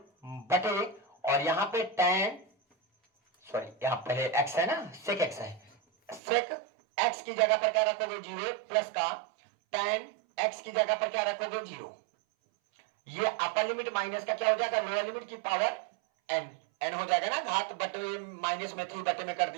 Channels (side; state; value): left; drops out; at 6.2 s